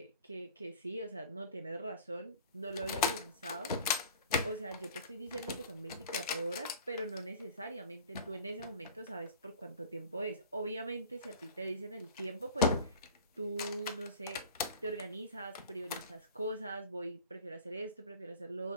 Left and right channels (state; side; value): inverted; both; correlation -0.43